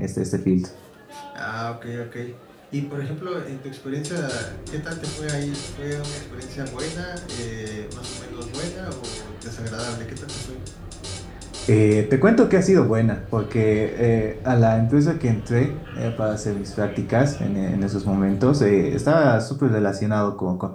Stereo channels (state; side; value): identical; both; correlation 1.00